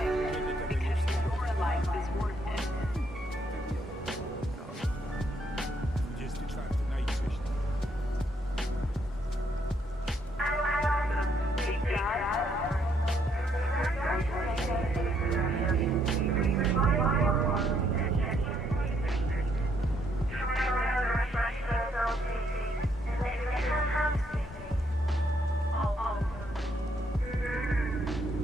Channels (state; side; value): normal; both; correlation 0.72